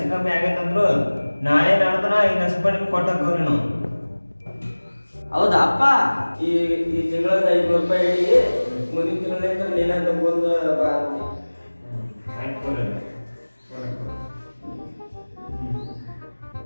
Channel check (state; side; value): inverted; both; correlation -1.00